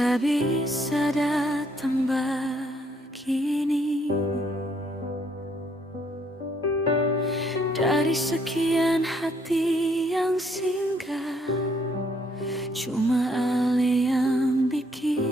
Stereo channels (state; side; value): normal; both; correlation 0.68